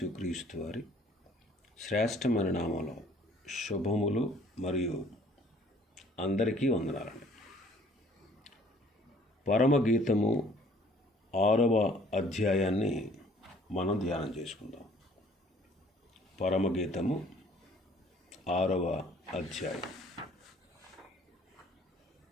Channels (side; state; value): both; normal; correlation 0.57